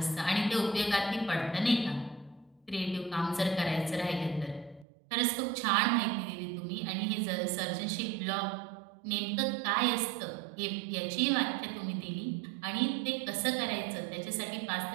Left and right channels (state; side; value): drops out; left; at 4.9 s